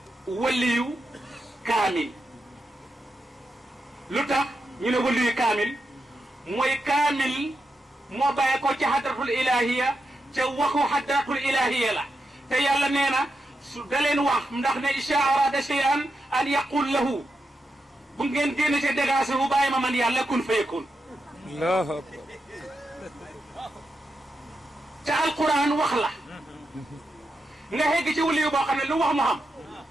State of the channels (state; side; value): normal; both; correlation 0.86